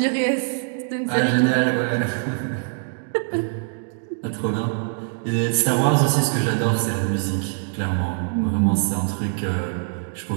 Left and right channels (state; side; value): silent; left; digital silence